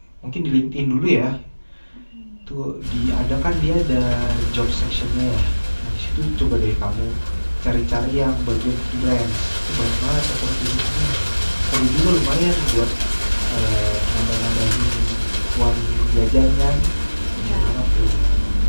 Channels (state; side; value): inverted; both; correlation -1.00